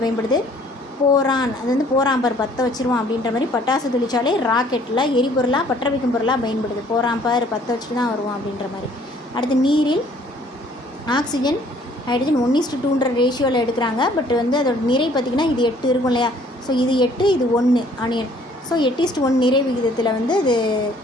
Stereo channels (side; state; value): both; normal; correlation 0.58